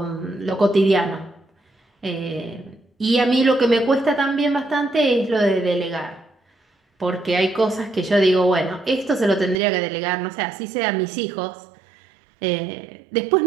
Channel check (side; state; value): left; drops out; at 9.6 s